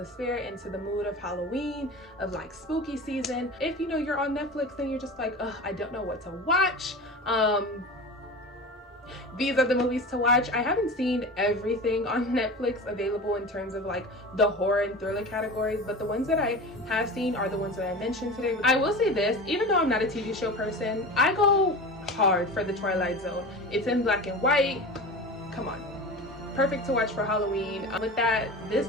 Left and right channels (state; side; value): normal; both; correlation 0.32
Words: spirit, into the mood of Halloween, of like spooky season. If you know you're on Netflix and you're just like, ugh, I don't know what to watch, these are the movies to watch. I haven't seen everything on Netflix available in terms of like the horror and thriller categories, but the ones that I have seen are the ones that I mentioned today. I will say this, even though I'm not a TV show person, I go hard for the Twilight Zone. It's in black and white. Come on, perfect to watch for Halloween. With that, this